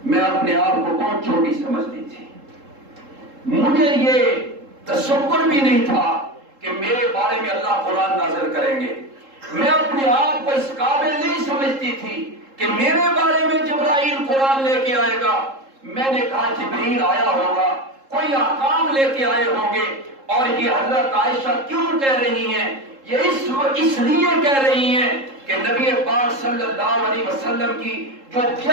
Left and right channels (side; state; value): left; late; 3.7 ms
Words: میں اپنے آپ کو بہت چھوٹی سمجھتی تھی، مجھے یہ تصور بھی نہیں تھا کہ میرے بارے میں اللہ قرآن نازل کریں گے. میں اپنے آپ کو اس قابل نہیں سمجھتی تھی کہ میرے بارے میں جبرائیل قرآن لے کے آئے گا. میں نے کہا جبرائیل آیا ہوگا, کوئی احکام لے کے آئے ہوں گے. اور یہ حضرت عائشہ کیوں کہہ رہی ہیں؟ یہ اس لیے کہہ رہی ہیں کہ نبی پاک صلی اللہ علیہ وسلم کی جو